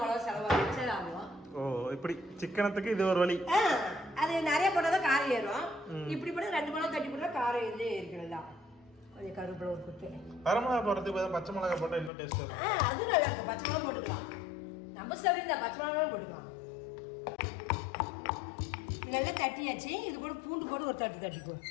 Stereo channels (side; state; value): right; drops out; at 12.1 s